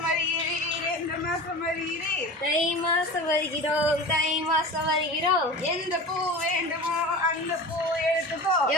வருகிறீர், எந்த மாசம் வருகிறீர்? தை மாசம் வருகிறோம், தை மாசம் வருகிறோம். எந்த பூ வேண்டுமோ அந்த பூ எடுத்துக்கோ.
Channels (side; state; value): both; normal; correlation 0.33